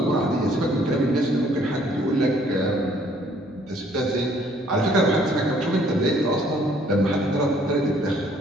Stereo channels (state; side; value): noise; right; hum, 27 dB below the sound